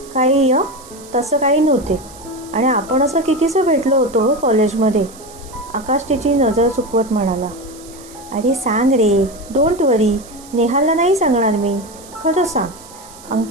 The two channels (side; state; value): right; noise; hiss, 20 dB below the sound